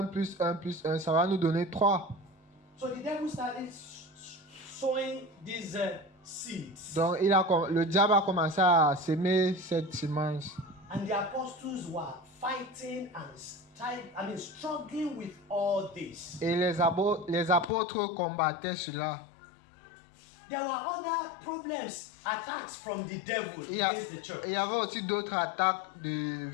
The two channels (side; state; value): right; drops out; at 17.7 s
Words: plus 1 plus 1, ça va nous donner 3. So the devil started sowing these seeds. Donc le diable a commencé à s'aimer cette semence. And the apostles were fighting and struggling with all this. Et les apôtres combattaient cela. There were other problems, attacks from the devil Il against the church. y avait aussi d'autres attaques